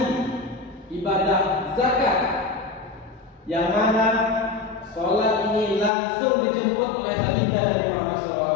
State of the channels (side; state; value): right; drops out; at 5.9 s